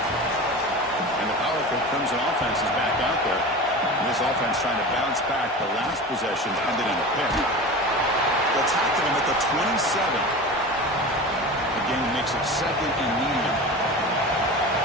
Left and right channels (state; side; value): normal; both; correlation 0.31